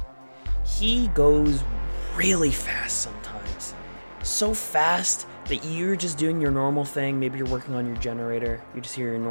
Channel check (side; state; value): both; inverted; correlation -1.00